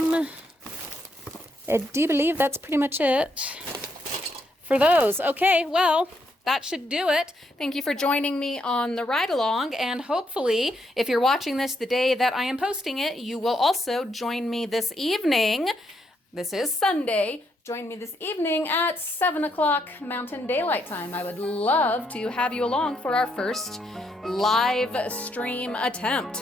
I do believe that's pretty much it for those. Okay, well, that should do it. Thank you for joining me on the ride along, and hopefully, if you're watching this the day that I am posting it, you will also join me this evening. This is Sunday. Join me this evening at 7 o'clock Mountain Daylight Time. I would love to have you along for our first live stream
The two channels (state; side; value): normal; both; correlation 0.76